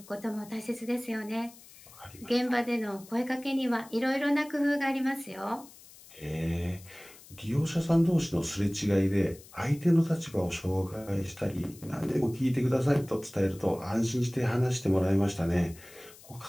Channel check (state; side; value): noise; left; hiss, 21 dB below the sound